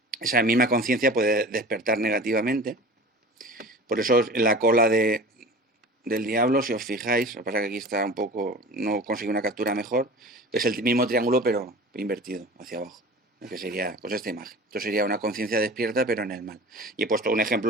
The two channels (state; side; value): normal; both; correlation 0.38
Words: esa misma conciencia puede despertar negativamente. Por eso en la cola del diablo, si os fijáis, lo que pasa es que aquí está un poco, no consigo una captura mejor, es el mismo triángulo pero invertido hacia abajo, que sería pues esta imagen. Esto sería una conciencia despierta pero en el mal. Y he puesto un